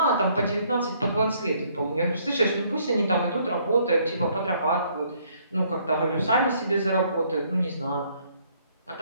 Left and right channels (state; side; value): inverted; both; correlation -0.66